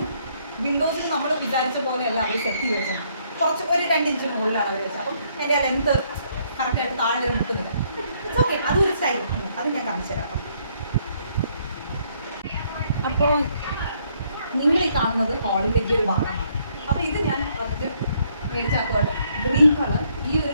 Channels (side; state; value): both; inverted; correlation -0.69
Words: വിൻഡോസിൽ നമ്മൾ വിചാരിച്ച പോലെയല്ല അവർ സെറ്റ് ചെയ്ത് വെച്ചത്. കുറച്ച് ഒരു 2 ഇഞ്ച് മുകളിലാണ് അവർ വെച്ചത്. അപ്പം എൻ്റെ ആ ലെന്ത് കറക്റ്റായിട്ട് താഴെ വരെ മുട്ടുന്നില്ല. ഇറ്റ്സ് ഓക്കെ, അതൊരു സ്റ്റൈൽ. അത് ഞാൻ കാണിച്ചു തരാം. അപ്പോൾ നിങ്ങൾ ഈ കാണുന്നത് ഹാളിലേക്ക് ഒരു ഭാഗമാണ്. അപ്പോൾ ഇത് ഞാൻ ഫസ്റ്റ് മേടിച്ചാക്കുവാണ് ഗ്രീൻ കളർ. ഈ ഒരു